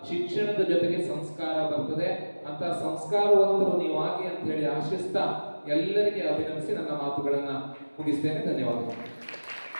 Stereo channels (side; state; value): both; inverted; correlation -1.00